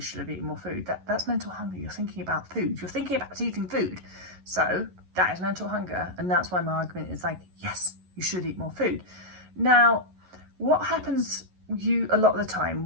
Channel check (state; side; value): late; left; 11 ms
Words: eaten more food, that's mental hunger. You're thinking about food. You're thinking about eating food. So that is mental hunger. And that's why my argument is like, yes, you should eat more food. Now, what happens a lot of the